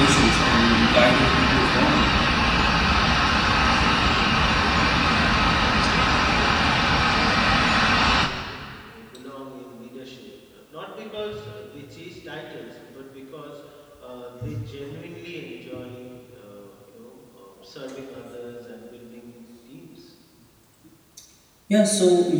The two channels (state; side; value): identical; both; correlation 1.00